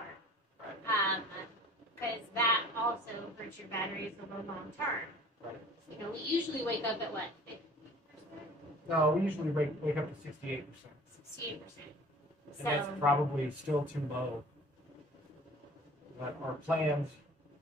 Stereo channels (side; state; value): both; normal; correlation 0.47